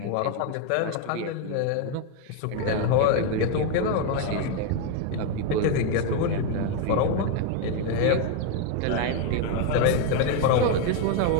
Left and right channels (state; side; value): different; both; correlation 0.01